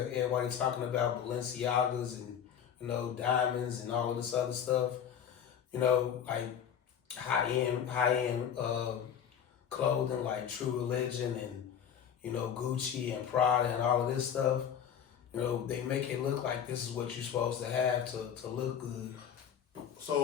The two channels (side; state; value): right; quieter; 8.5 dB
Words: everybody talking about Balenciagas and diamonds and all of this other stuff. Like high end clothing like True Religion and Gucci and Prada and all of this stuff. They make it look like this is what you're supposed to have to look good.